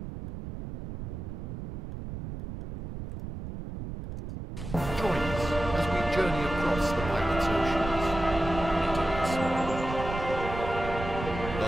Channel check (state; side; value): noise; right; rumble, 8 dB below the sound